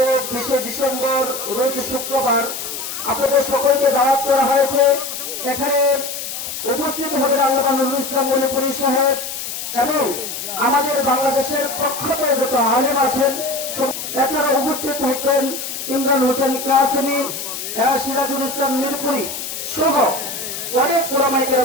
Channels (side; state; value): left; noise; hiss, 6 dB below the sound